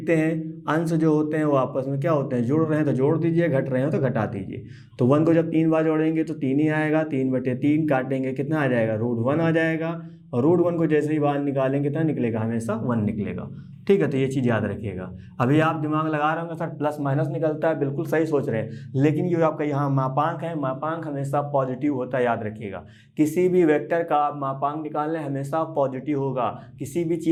हैं, अंश जो होते हैं वो आपस में क्या होते हैं, जुड़ रहे हैं तो जोड़ दीजिए, घट रहे हैं तो घटा दीजिए। तो 1 को जब 3 बार जोड़ेंगे तो 3 ही आएगा, 3/3 काटेंगे कितना आ जाएगा, √1 आ जाएगा। और √1 को जैसे ही बाहर निकालेंगे कितना निकलेगा, हमेशा 1 निकलेगा। ठीक है, तो ये चीज़ याद रखिएगा। अभी आप दिमाग लगा रहे होंगे सर प्लस माइनस निकलता है, बिल्कुल सही सोच रहे हैं, लेकिन ये आपका यहाँ मापांक है, मापांक हमेशा पॉजिटिव होता है, याद रखिएगा। किसी भी वेक्टर का आप मापांक निकाल लें हमेशा पॉजिटिव होगा, किसी भी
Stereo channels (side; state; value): both; identical; correlation 1.00